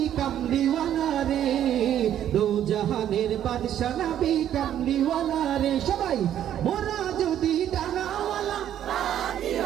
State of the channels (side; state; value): left; quieter; 10.7 dB